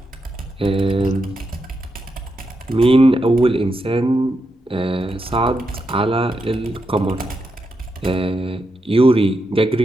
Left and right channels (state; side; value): normal; both; correlation 0.85